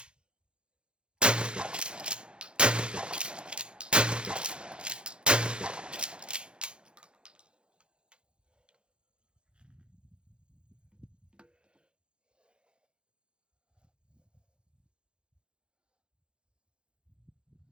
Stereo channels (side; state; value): left; late; 0.053 ms